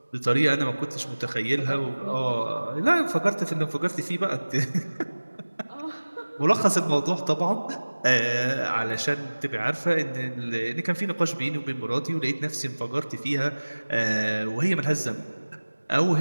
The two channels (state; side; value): inverted; both; correlation -1.00